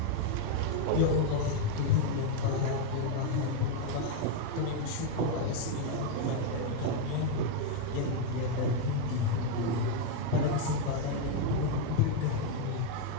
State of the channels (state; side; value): different; both; correlation 0.01